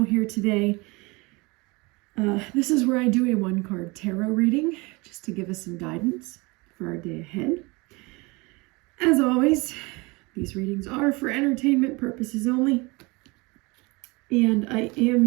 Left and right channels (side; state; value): left; quieter; 25.6 dB